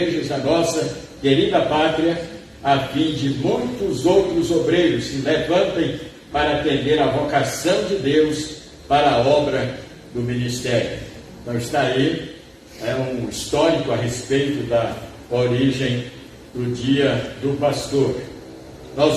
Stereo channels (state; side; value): identical; both; correlation 1.00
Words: da nossa querida pátria, a fim de muitos outros obreiros se levantem para atender a vocação de Deus para a obra do ministério. Então está aí, é um histórico a respeito da origem do Dia do Pastor. Nós